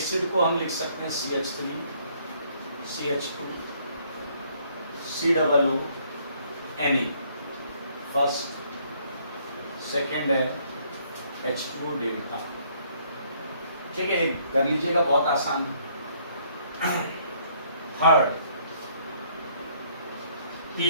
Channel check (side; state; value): both; inverted; correlation -0.65